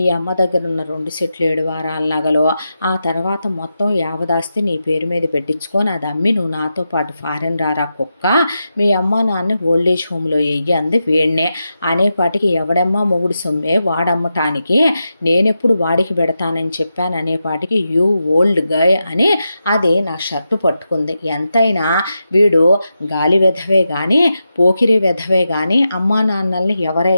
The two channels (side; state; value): both; inverted; correlation -0.88